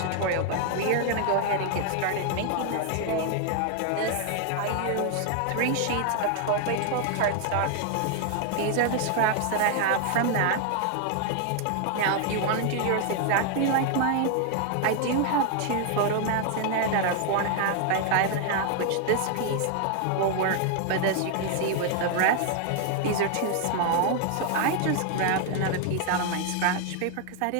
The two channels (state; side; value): different; both; correlation 0.00